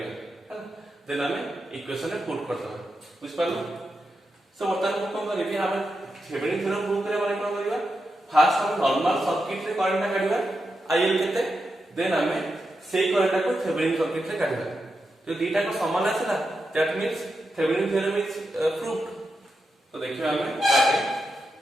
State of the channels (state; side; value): normal; both; correlation 0.87